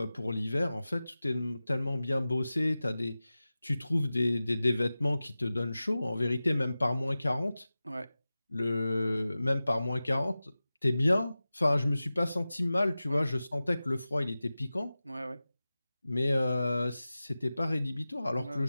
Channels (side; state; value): both; inverted; correlation -0.96